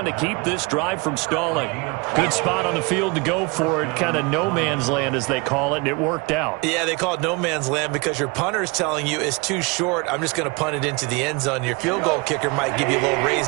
to keep this drive from stalling. Good spot on the field to go for it. Kind of no man's land, as they call it, and it worked out. Yeah, they call it no man's land because your punter is telling you it's too short. I'm just going to punt it into the end zone. Your field goal kicker might give you a little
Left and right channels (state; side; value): quieter; left; 28.0 dB